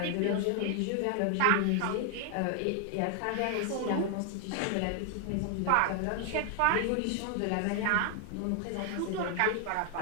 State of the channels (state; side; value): different; both; correlation 0.00